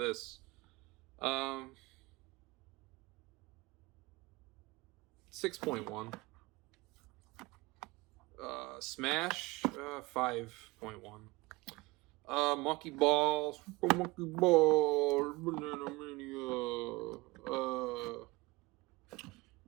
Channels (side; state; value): left; quieter; 22.4 dB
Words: 6.1. Smash 5.1. Monkey Balls, Monkey Balls, Banana Mania.